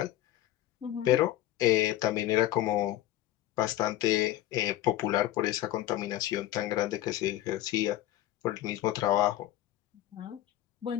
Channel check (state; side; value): quieter; right; 14.1 dB